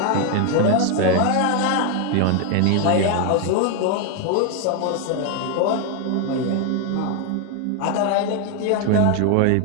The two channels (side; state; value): both; different; correlation 0.01